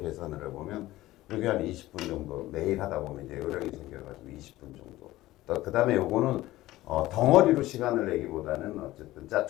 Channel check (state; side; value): quieter; right; 16.7 dB